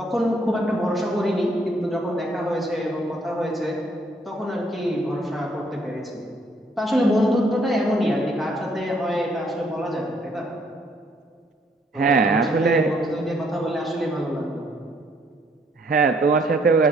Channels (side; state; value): both; normal; correlation 0.67